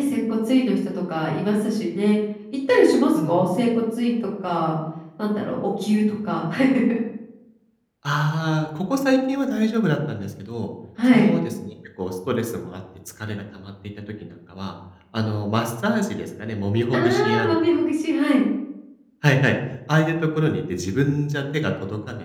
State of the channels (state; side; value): identical; both; correlation 1.00